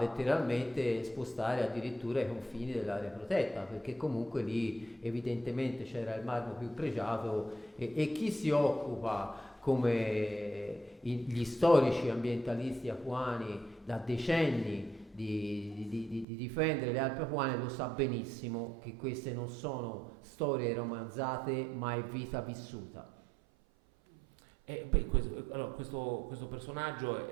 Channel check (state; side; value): drops out; left; at 16.2 s